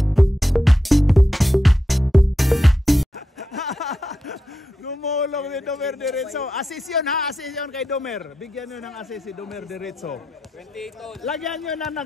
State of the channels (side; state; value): both; normal; correlation 0.87